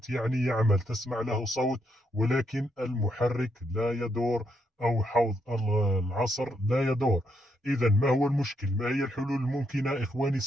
يعني يعمل، تسمع له صوت ولكن المحرك لا يدور، أو حوض العصر لا يدور. إذا ما هو المشكل؟ ما هي الحلول الممكنة إخواني؟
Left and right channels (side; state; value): both; normal; correlation 0.78